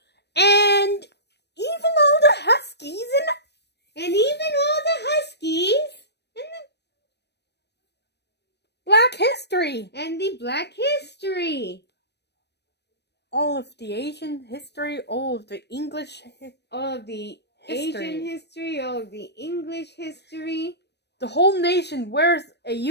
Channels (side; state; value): right; late; 0.49 ms